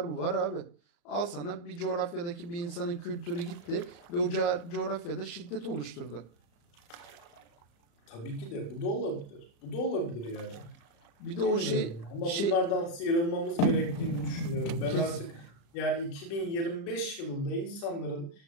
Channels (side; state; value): right; late; 35 ms